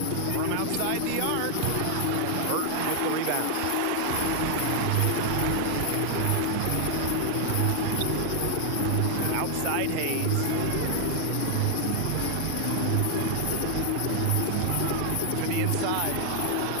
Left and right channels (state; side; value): different; both; correlation 0.00